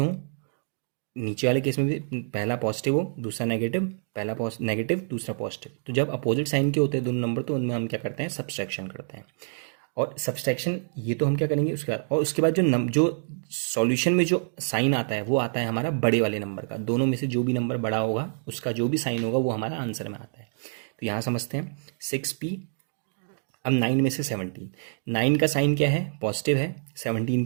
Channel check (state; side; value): silent; left; digital silence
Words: नीचे वाले केस में भी पहला पॉजिटिव हो दूसरा नेगेटिव, पहला नेगेटिव दूसरा पॉजिटिव, तो जब अपोजिट साइन के होते हैं दोनों नंबर तो उनमें हम क्या करते हैं, सब्सट्रैक्शन करते हैं। और सब्सट्रैक्शन ये तो हम क्या करेंगे उसके बाद, और उसके बाद जो सॉल्यूशन में जो साइन आता है वो आता है हमारा बड़े वाले नंबर का, दोनों में से जो भी नंबर बड़ा होगा उसका जो भी साइन होगा वो हमारा आंसर में आता है। तो यहाँ समझते हैं 6p। अब 9 में से 17, 9 का साइन क्या है, पॉजिटिव है, 17